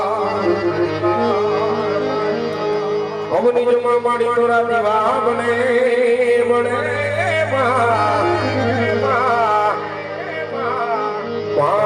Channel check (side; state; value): both; identical; correlation 1.00